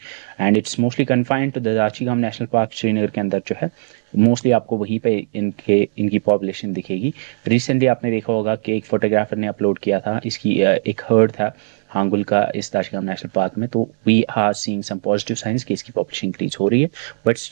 and it's mostly confined to the Dachigam national park Srinagar के अंदर जो है, मोस्टली आपको वहीं पे इनकी पॉपुलेशन दिखेगी। रिसेंटली आपने देखा होगा कि एक फोटोग्राफर ने अपलोड किया था, इसकी एक हर्ड था हांगुल का इस दाचीगाम नेशनल पार्क में, तो we are seeing some positive signs कि इसकी पॉपुलेशन इंक्रीज हो रही है, बट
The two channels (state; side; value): silent; left; 65 dB below the other